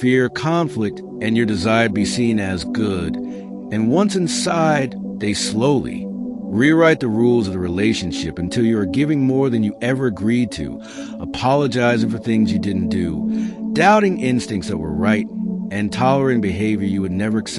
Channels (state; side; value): identical; both; correlation 1.00